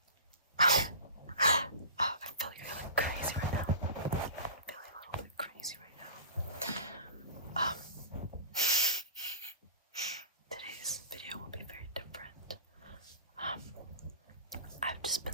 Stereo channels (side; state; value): both; inverted; correlation -0.33